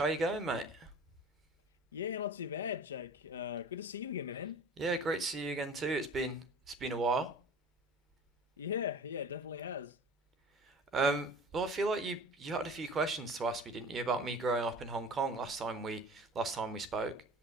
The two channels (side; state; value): both; normal; correlation 0.41